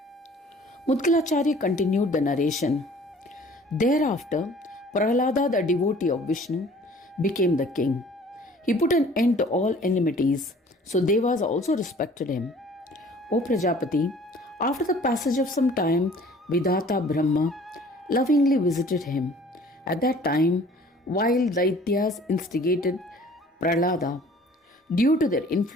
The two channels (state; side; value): normal; both; correlation 0.51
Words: Mudgalacharya continued the narration. Thereafter, Prahlada, the devotee of Vishnu, became the king. He put an end to all enmities, so Devas also respected him. O Prajapati, after the passage of some time, Vidhata Brahma lovingly visited him. At that time, while Daityas instigated Prahlada, due to their